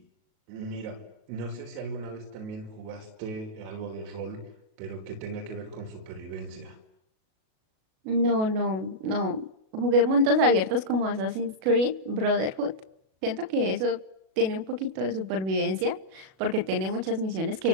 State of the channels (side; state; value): left; late; 37 ms